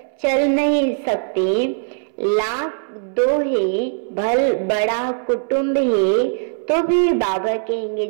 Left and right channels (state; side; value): silent; left; 66 dB below the other